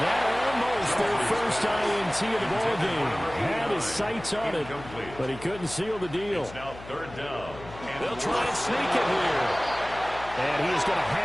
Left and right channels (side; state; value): left; noise; hum, 16 dB below the sound